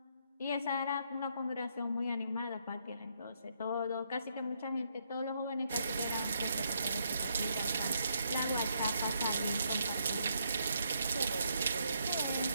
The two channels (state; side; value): inverted; both; correlation -0.75